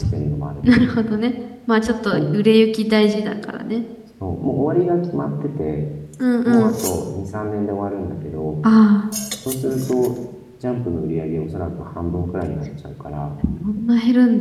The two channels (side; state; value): both; identical; correlation 1.00